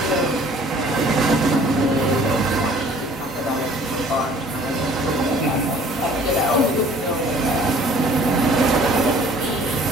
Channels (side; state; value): both; normal; correlation 0.53